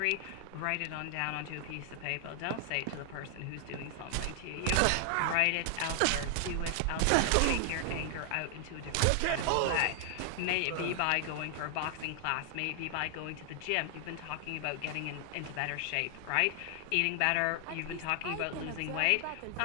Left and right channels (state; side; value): different; both; correlation 0.00